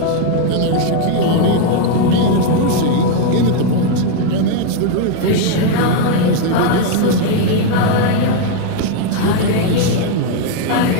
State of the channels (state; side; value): different; both; correlation 0.01